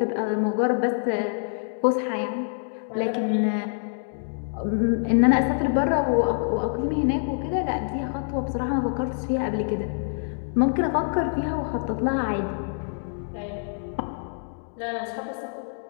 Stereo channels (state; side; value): silent; right; digital silence